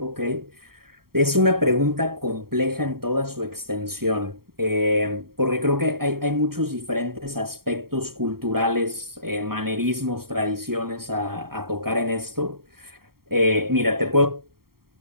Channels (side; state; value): left; late; 0.94 ms